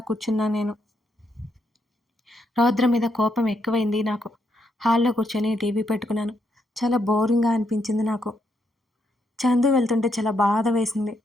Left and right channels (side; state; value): both; normal; correlation 0.78